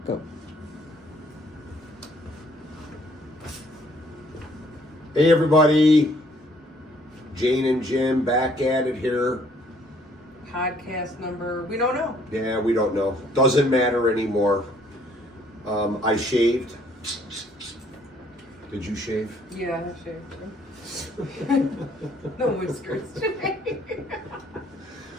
Go. Hey everybody, Jane and Jim back at it here. Podcast number, we don't know. Yeah, we don't know. Doesn't matter anymore. I shaved. Did you shave? Yeah, I shaved. No whiskers today.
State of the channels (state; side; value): normal; both; correlation 0.63